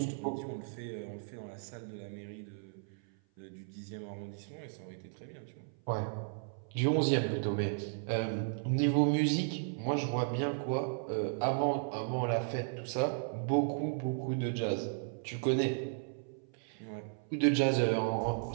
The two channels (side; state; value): left; silent; 54 dB below the other